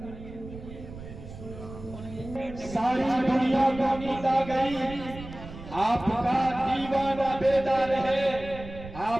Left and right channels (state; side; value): noise; right; rumble, 13 dB below the sound